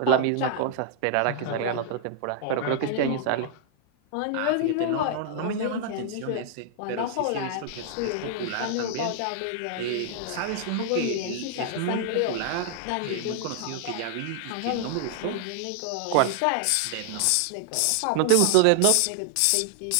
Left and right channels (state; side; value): different; both; correlation 0.00